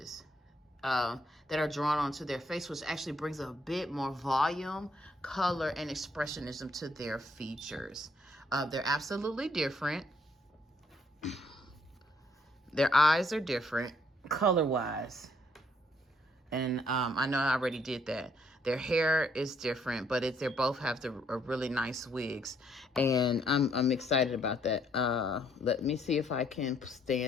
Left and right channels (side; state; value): both; normal; correlation 0.69